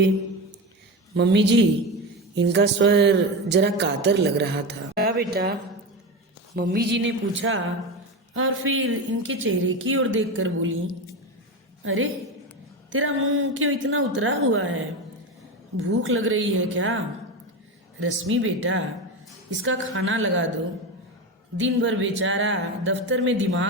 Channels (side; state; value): both; normal; correlation 0.20